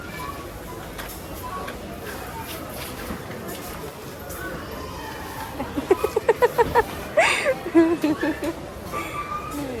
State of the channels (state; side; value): identical; both; correlation 1.00